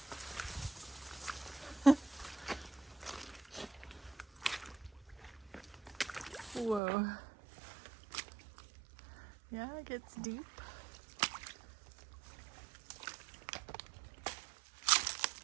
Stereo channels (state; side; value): drops out; left; at 6.8 s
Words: Whoa. Yeah, it gets deep.